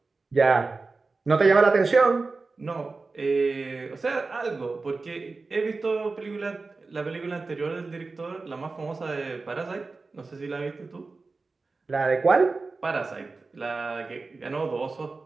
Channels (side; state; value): left; quieter; 3.9 dB